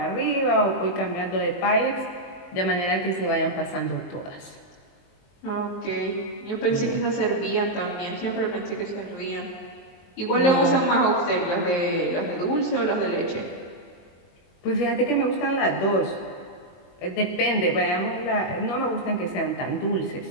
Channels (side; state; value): right; late; 23 ms